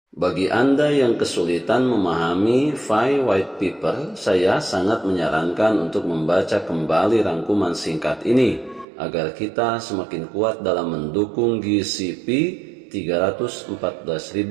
Bagi Anda yang kesulitan memahami FI White Paper, saya sangat menyarankan untuk membaca kembali rangkuman singkat ini agar kita semakin kuat dalam mendukung GCP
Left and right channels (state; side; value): drops out; left; at 8.8 s